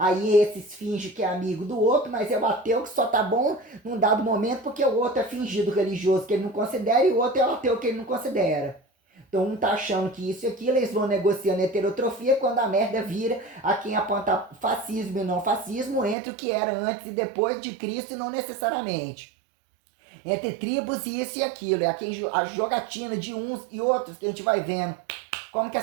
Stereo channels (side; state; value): left; drops out; at 16.2 s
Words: esses fingem que é amigo do outro, mas é o ateu que só tá bom num dado momento porque o outro é fingido religioso que ele não considera e o outro é o ateu que ele não considera. Então um tá achando que isso e aquilo, eles vão negociando heterotrofia, quando a merda vira a quem aponta fascismo e não fascismo, entre o que era antes e depois de Cristo, e não necessariamente entre tribos e isso e aquilo. É a jogatina de uns e outros que a gente vai vendo. Como que